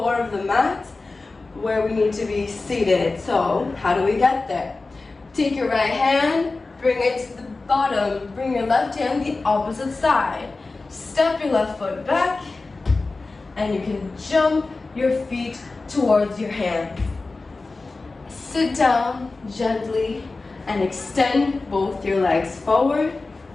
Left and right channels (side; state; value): right; quieter; 3.6 dB